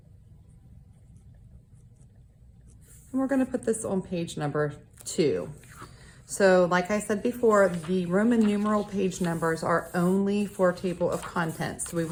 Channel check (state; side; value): identical; both; correlation 1.00